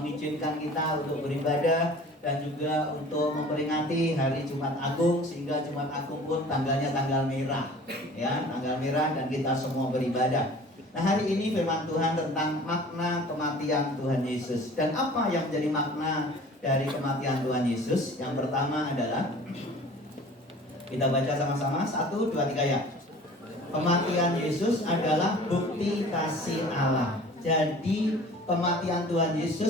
kita untuk beribadah dan juga untuk memperingati hari Jumat Agung, sehingga Jumat Agung pun tanggalnya tanggal merah, ya, tanggal merah, dan kita semua beribadah. Nah, hari ini firman Tuhan tentang makna kematian Tuhan Yesus. Dan apa yang menjadi makna dari kematian Tuhan Yesus? Yang pertama adalah, kita baca sama-sama, 1, 2, 3 ya. Kematian Yesus adalah bukti kasih Allah. Jadi kematian Tuhan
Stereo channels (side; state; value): both; normal; correlation 0.45